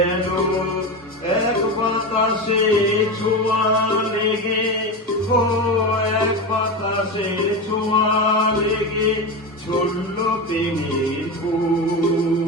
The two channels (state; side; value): normal; both; correlation 0.20